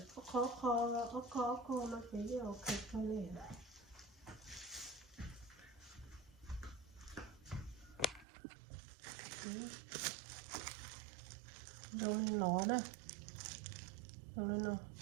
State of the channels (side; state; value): left; drops out; at 8.2 s